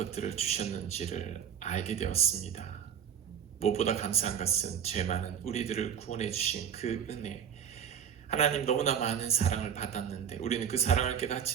주셨는지를 알게 되었습니다. 무엇보다 감사한 것은 죄 많은 우리들을 구원해 주신 그 은혜, 하나님 너무나 많은 사랑을 받았는데 우리는 그 사랑을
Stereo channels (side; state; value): left; quieter; 8.3 dB